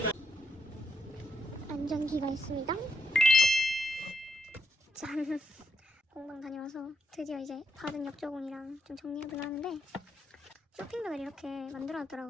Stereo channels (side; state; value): both; normal; correlation 0.80